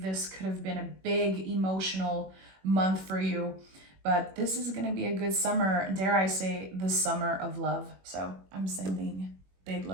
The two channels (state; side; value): late; left; 21 ms